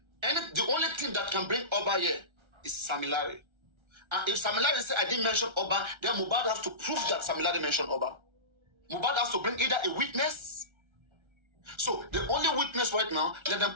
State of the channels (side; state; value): left; late; 1.3 ms